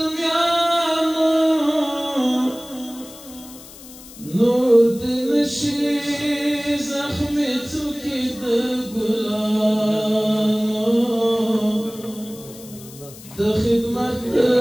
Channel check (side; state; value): left; noise; hiss, 18 dB below the sound